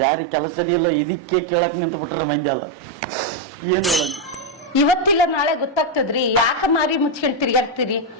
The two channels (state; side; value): normal; both; correlation 0.02